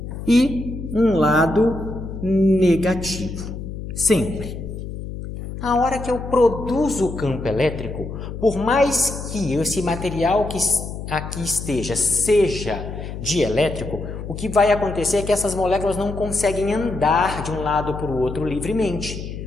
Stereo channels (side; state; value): left; noise; hum, 8 dB below the sound